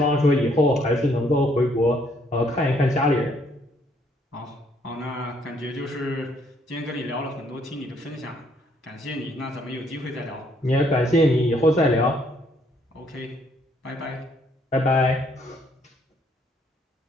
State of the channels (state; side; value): normal; both; correlation 0.68